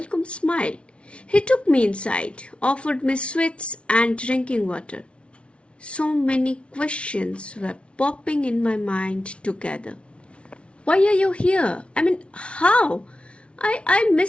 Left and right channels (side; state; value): right; late; 0.060 ms